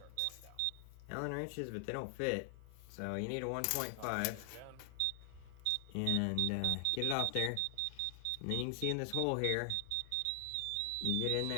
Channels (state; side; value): different; both; correlation 0.00